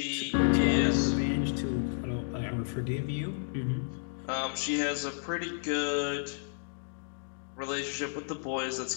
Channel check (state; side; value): silent; right; digital silence